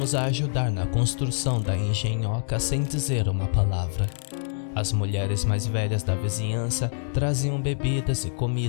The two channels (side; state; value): right; silent; digital silence